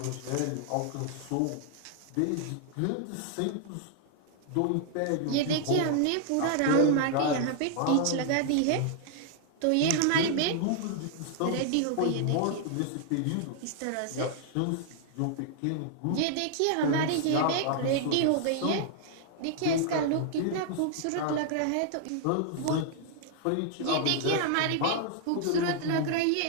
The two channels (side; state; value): both; different; correlation 0.00